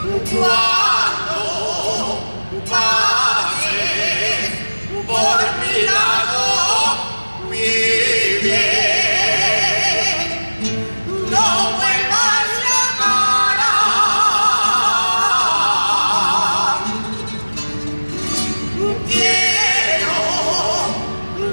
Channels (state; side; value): inverted; both; correlation -1.00